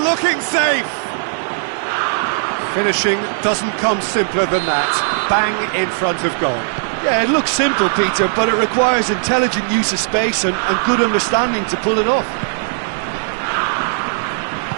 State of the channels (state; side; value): silent; left; 60 dB below the other